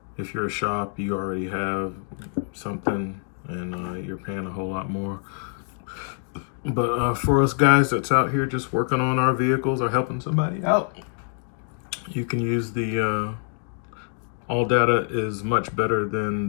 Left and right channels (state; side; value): silent; right; 55 dB below the other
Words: If you're a shop, you already have something and you're paying a whole lot more. But for us guys that's out here just working on our vehicles or helping somebody out, you can use the AllData is much better than